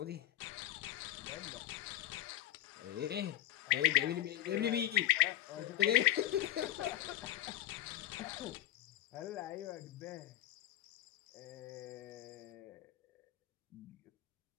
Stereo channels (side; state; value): right; quieter; 13.6 dB